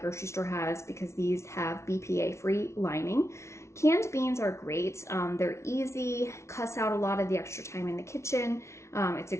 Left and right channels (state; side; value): late; right; 0.13 ms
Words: store has, because these have BPA-free lining. Canned beans are great. They're easy, cuts out a lot of the extra time in the kitchen. It's a